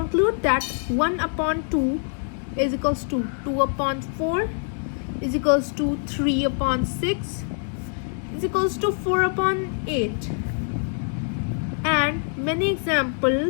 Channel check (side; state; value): right; silent; 61 dB below the other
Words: that 1 upon 2 is equals to 2 upon 4 is equals to 3 upon 6 is equals to 4 upon 8. And many